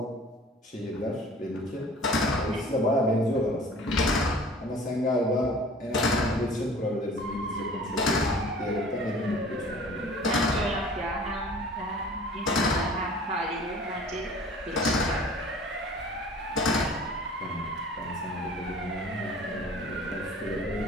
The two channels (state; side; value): normal; both; correlation 0.46